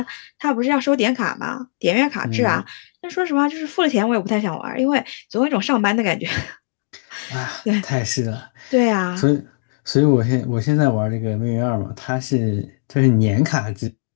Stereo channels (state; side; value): silent; right; digital silence